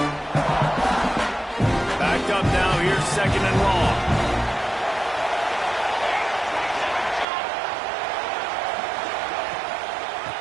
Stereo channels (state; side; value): drops out; left; at 7.2 s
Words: Backed up now, here's 2nd and long.